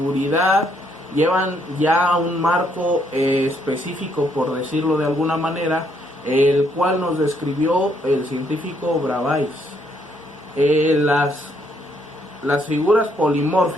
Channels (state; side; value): normal; both; correlation 0.71